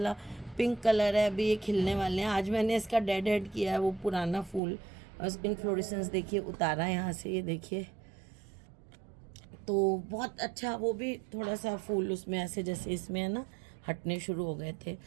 पिंक कलर है, अभी ये खिलने वाले हैं। आज मैंने इसका डेड हेड किया है, वो पुराना फूल इन्फ्लोरेसेंस देखिए उतारा है यहाँ से, ये देखिए। तो बहुत अच्छा, वो भी थोड़ा सा फूल उसमें ऐसे जैसे इसमें है ना, हटने शुरू हो गए थे।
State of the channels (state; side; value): drops out; left; at 4.6 s